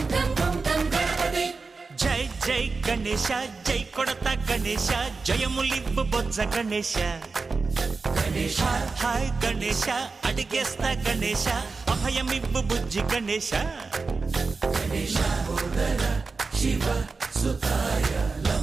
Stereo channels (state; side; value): quieter; left; 4.2 dB